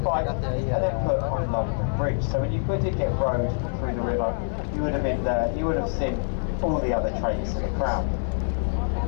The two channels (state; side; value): silent; right; digital silence